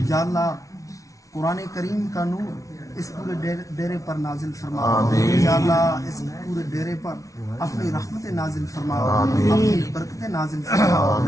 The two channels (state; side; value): late; right; 0.16 ms